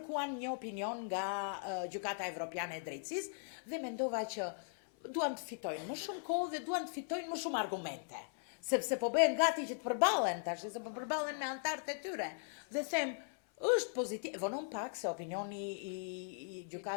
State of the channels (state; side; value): silent; right; 52 dB below the other